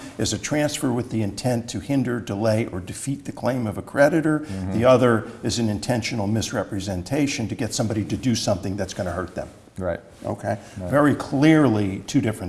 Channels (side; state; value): both; identical; correlation 1.00